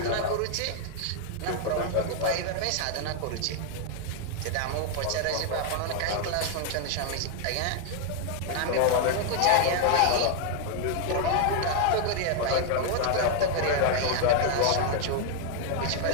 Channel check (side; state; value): both; different; correlation 0.00